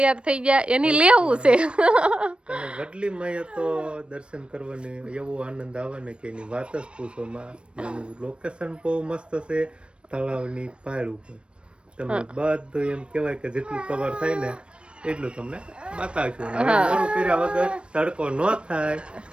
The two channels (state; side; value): late; left; 0.058 ms